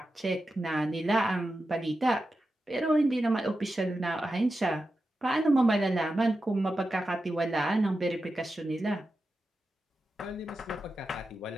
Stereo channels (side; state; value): both; normal; correlation 0.91